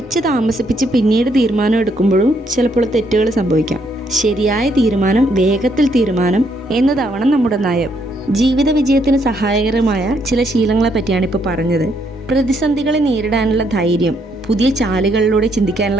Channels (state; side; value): normal; both; correlation 0.73